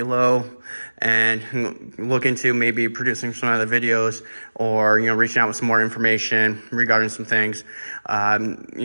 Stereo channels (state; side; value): inverted; both; correlation -1.00